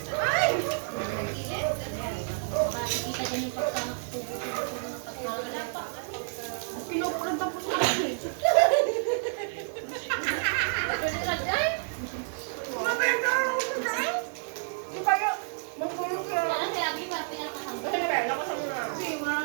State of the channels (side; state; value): left; silent; 58 dB below the other